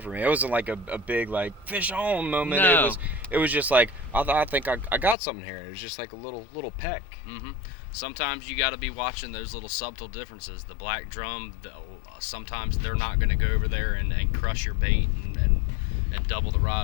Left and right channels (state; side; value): drops out; right; at 5.2 s